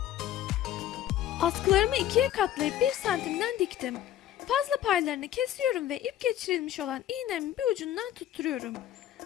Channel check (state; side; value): quieter; right; 11.8 dB